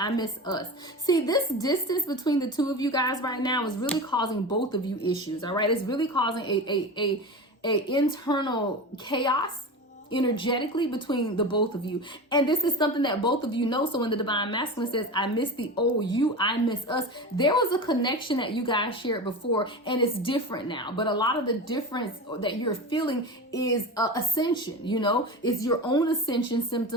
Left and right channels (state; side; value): normal; both; correlation 0.27